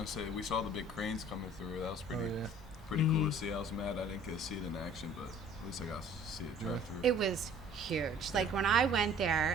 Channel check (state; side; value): normal; both; correlation 0.52